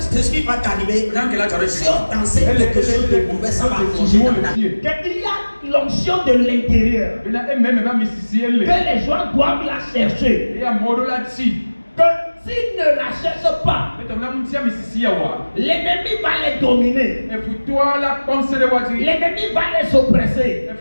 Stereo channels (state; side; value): inverted; both; correlation -1.00